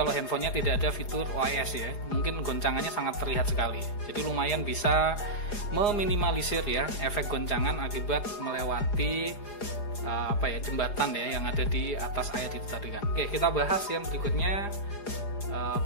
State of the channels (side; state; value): right; late; 4.9 ms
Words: handphonenya tidak ada fitur OIS ya, mungkin goncangannya sangat terlihat sekali. Jadi lumayan bisa meminimalisir ya efek goncangan akibat melewati apa ya jembatan ya yang ada di atas air itu tadi kan. Oke, kita bahas yang berikutnya,